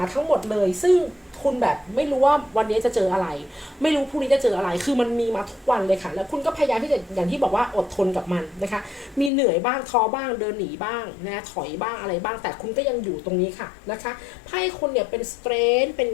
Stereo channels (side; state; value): right; drops out; at 9.3 s